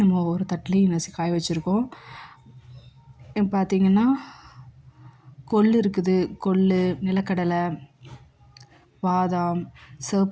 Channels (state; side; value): identical; both; correlation 1.00